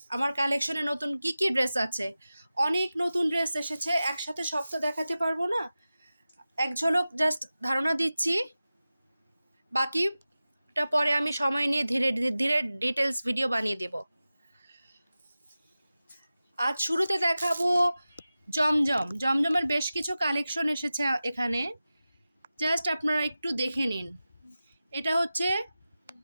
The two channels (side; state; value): both; inverted; correlation -0.95